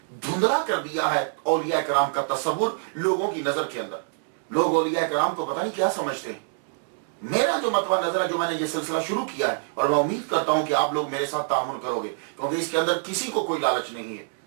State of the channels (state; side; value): silent; left; digital silence